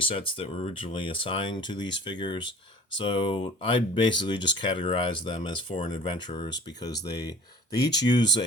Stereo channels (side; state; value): both; normal; correlation 0.44